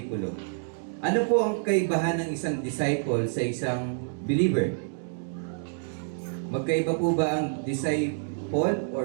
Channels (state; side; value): silent; left; digital silence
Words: ano po ang kaibahan ng isang disciple sa isang believer? Magkaiba po ba ang disciple